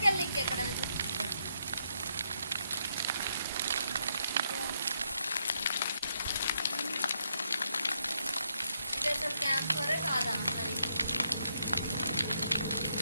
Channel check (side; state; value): both; inverted; correlation -0.77